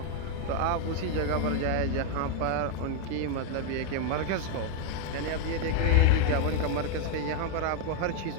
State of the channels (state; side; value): different; both; correlation 0.01